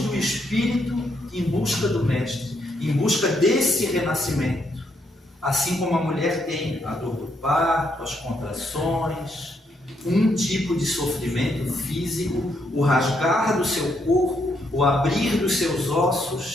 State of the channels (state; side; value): normal; both; correlation 0.76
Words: espírito em busca do Mestre, em busca desse renascimento. Assim como a mulher tem a dor do parto, as contrações, um tipo de sofrimento físico, o rasgar do seu corpo, o abrir dos seus